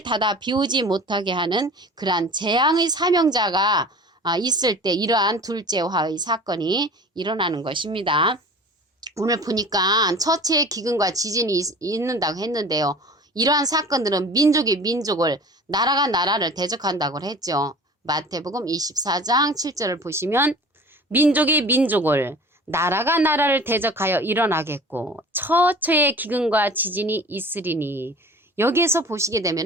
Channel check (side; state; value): both; normal; correlation 0.41